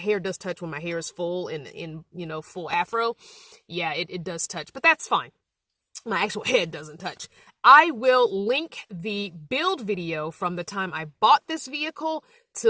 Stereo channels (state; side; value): identical; both; correlation 1.00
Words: does touch when my hair is full and in full afro. Yeah, it does touch, but that's fine. My actual head doesn't touch. I will link the build video from the time I bought this vehicle